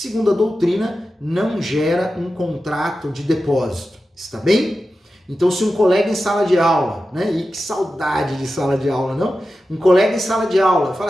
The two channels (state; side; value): normal; both; correlation 0.92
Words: a doutrina, não gera um contrato de depósito. Está bem? Então, se um colega em sala de aula, né? E que saudade de sala de aula, não? Um colega em sala de aula fala